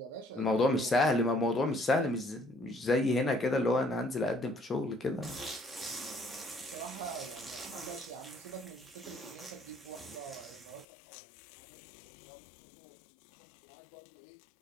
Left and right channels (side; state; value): right; drops out; at 10.9 s